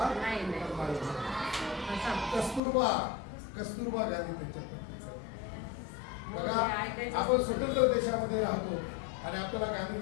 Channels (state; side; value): drops out; right; at 2.6 s